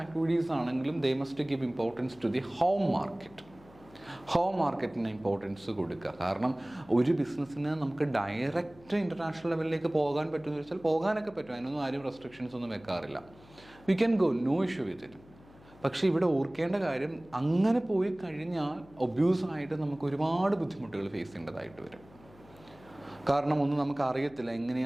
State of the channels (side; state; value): left; noise; hum, 24 dB below the sound